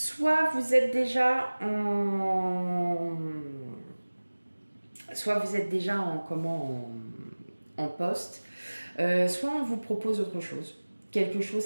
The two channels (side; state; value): both; inverted; correlation -1.00